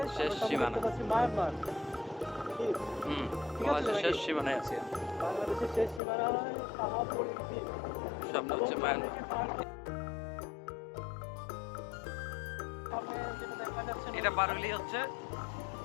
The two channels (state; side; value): drops out; right; at 6.0 s